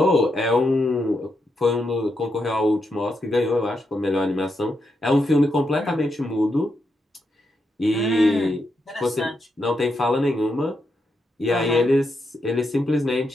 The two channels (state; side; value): normal; both; correlation 0.83